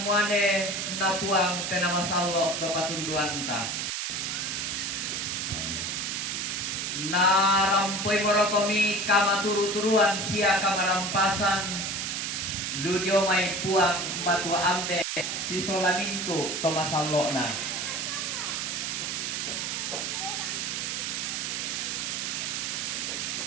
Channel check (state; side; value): noise; right; hiss, 2 dB below the sound